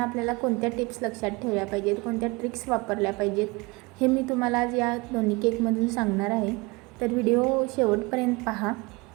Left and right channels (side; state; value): left; quieter; 25.4 dB